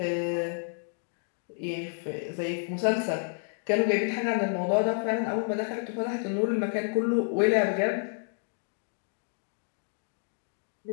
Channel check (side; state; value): right; silent; digital silence